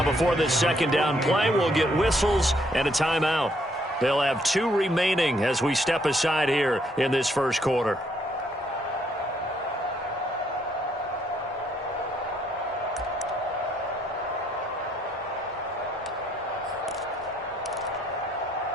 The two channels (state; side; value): normal; both; correlation 0.70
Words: before this 2nd down play, we'll get whistles and a timeout. They'll have 2 remaining as we step aside here in this first quarter.